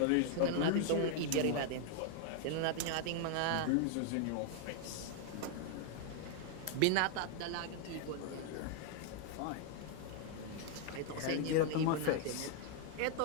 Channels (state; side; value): different; both; correlation 0.00